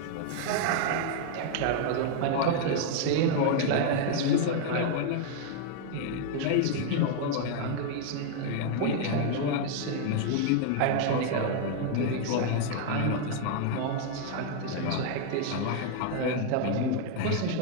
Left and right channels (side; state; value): both; different; correlation 0.00